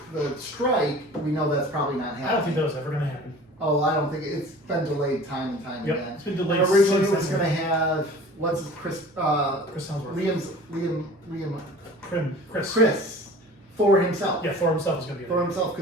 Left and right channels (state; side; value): normal; both; correlation 0.43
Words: the strike, we know that's probably not happening. I don't think that was ever going to happen. Oh, I don't think it's been delayed time and time Yep, again. it's been delayed. Originally, it since was going to have Chris Hemsworth. Chris for himself. Yeah, for himself is going to be. For himself,